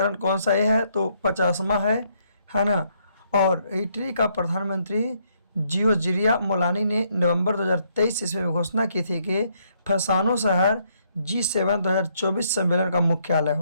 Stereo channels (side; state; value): both; inverted; correlation -0.72